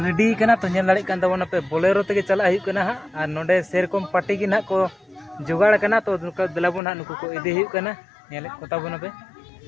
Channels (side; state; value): right; drops out; at 6.8 s